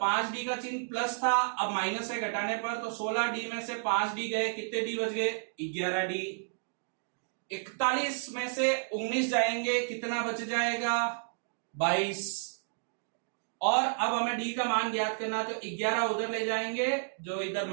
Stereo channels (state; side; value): silent; left; digital silence